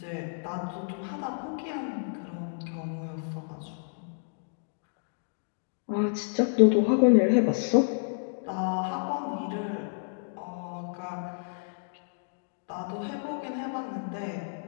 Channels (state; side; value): silent; right; digital silence